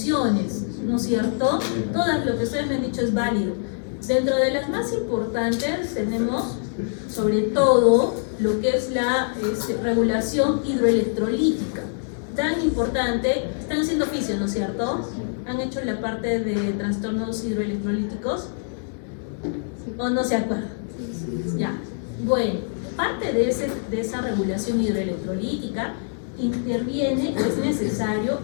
¿no es cierto? Todas lo que ustedes me han dicho es válido. Dentro de las más importantes tenemos sobre todo lo que es la regulación hidroelectrolítica, tan importante. Están haciendo fisio, ¿no es cierto? ¿Han hecho la parte de trastornos hidroelectrolíticos? ¿O no se acuerdan? Ya, bueno, parte de esa regulación hidroelectrolítica interviene, es necesario,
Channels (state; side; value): silent; right; digital silence